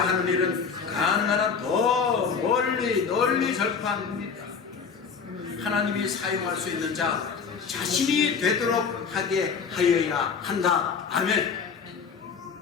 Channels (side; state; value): right; quieter; 5.9 dB